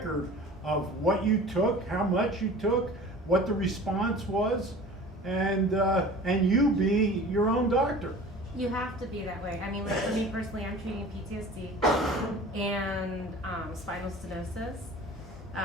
of what you took, how much you took, what the response was, and you be your own doctor. You have to be that way. I mean, like for me personally, I'm treating PTSD and spinal stenosis.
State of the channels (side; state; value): both; normal; correlation 0.41